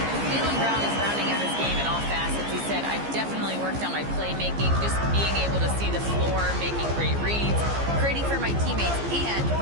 Jaylen Brown is rounding out his game in all facets. He said, I've definitely worked on my playmaking, just being able to see the floor, making great reads, creating for my teammates, and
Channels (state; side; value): late; left; 15 ms